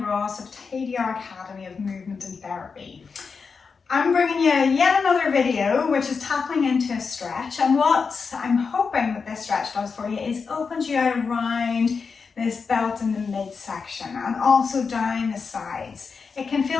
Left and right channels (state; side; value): quieter; right; 5.2 dB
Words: Ross of TDR Academy of Movement and Therapy. I'm bringing you yet another video which is tapping into a stretch, and what I'm hoping that this stretch does for you is opens you out around this belt in the midsection and also down the sides. It can